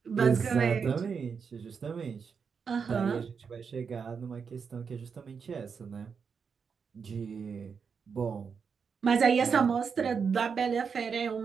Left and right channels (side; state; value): left; quieter; 6.1 dB